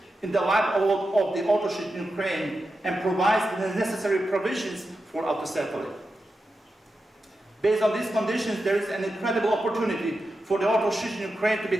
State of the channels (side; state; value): both; normal; correlation 0.90